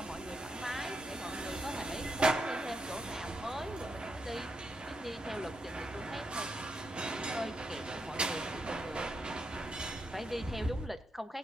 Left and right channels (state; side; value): normal; both; correlation 0.82